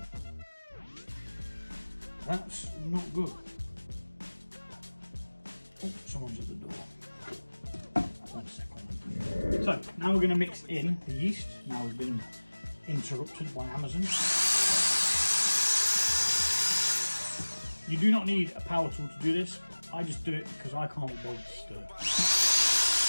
That's not good. Oh, someone's at the door. 1 second. So, now we're going to mix in the yeast. Now we've been interrupted by Amazon. You do not need a power tool to do this. I just do it because I can't be bothered to stir.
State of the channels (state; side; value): inverted; both; correlation -1.00